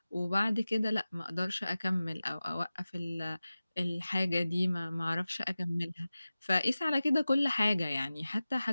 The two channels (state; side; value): inverted; both; correlation -0.96